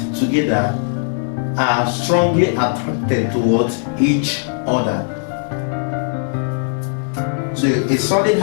together are strongly attracted towards each other. So a solid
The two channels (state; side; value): silent; right; 67 dB below the other